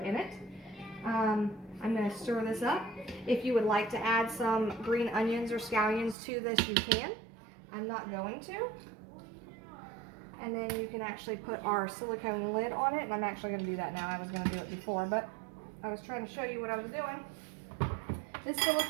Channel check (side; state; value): left; drops out; at 6.2 s